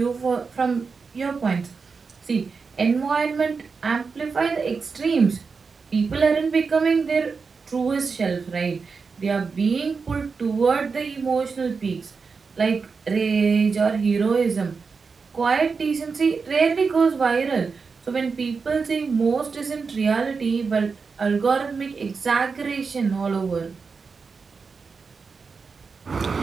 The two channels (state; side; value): quieter; left; 5.0 dB